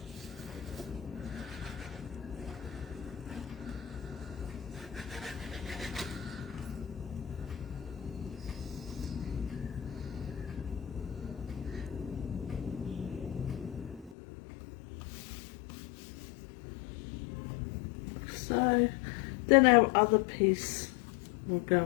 So then our other piece will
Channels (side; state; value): right; drops out; at 14.2 s